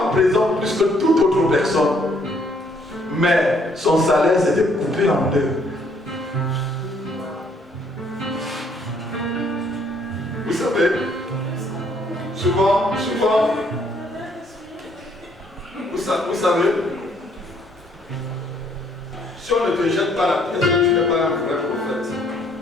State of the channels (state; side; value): normal; both; correlation 0.66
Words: présents plus que toute autre personne. Mais son salaire s'était coupé en deux. Vous savez, souvent, vous savez, si on ne te jette pas la pièce, tu n'es pas un vrai prophète.